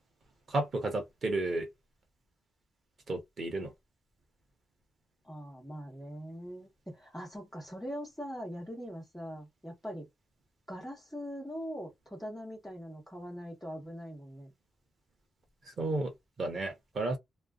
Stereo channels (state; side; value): normal; both; correlation 0.82